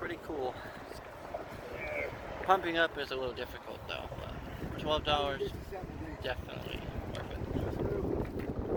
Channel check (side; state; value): both; identical; correlation 1.00